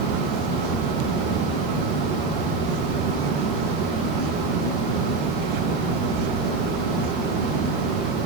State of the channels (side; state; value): left; quieter; 3.9 dB